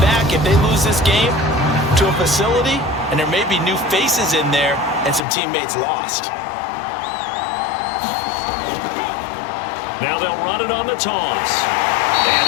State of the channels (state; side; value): drops out; right; at 5.2 s